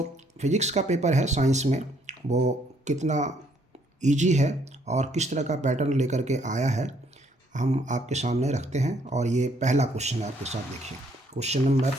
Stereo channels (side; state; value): both; normal; correlation 0.68